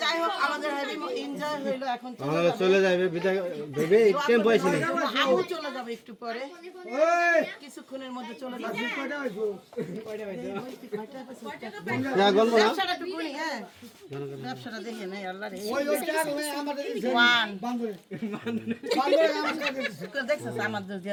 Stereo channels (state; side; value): identical; both; correlation 1.00